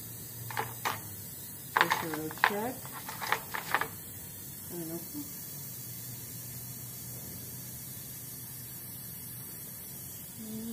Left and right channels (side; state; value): both; identical; correlation 1.00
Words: check. And open.